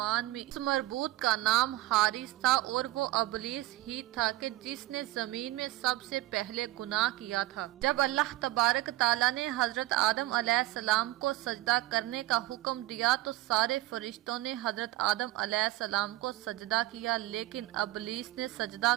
میں اس مربوط کا نام حارث تھا، اور وہ ابلیس ہی تھا کہ جس نے زمین میں سب سے پہلے گناہ کیا تھا۔ جب اللہ تبارک تعالیٰ نے حضرت آدم علیہ السلام کو سجدہ کرنے کا حکم دیا تو سارے فرشتوں نے حضرت آدم علیہ السلام کو سجدہ کیا، لیکن ابلیس نے سجدہ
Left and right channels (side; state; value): left; quieter; 17.8 dB